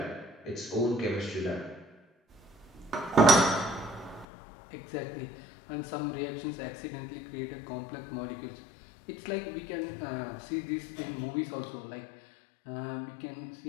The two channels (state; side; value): drops out; right; at 4.2 s